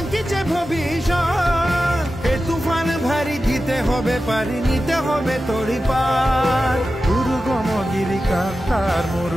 ভবিষ্যৎ এ তুফান ভারী দিতে হবে পারি নিতে হবে তড়ি পার দুর্গম গিরিকান্তার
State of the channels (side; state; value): both; normal; correlation 0.93